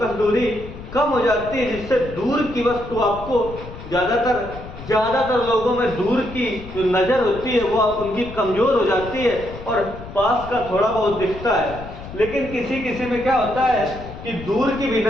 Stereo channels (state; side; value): noise; left; rumble, 13 dB below the sound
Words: दूरी कम हो जाती है, जिससे दूर की वस्तु आपको ज्यादातर लोगों में दूर की जो नजर होती है वो उनकी कमजोर हो जाती है और पास का थोड़ा बहुत दिखता है। लेकिन किसी किसी में क्या होता है कि दूर की भी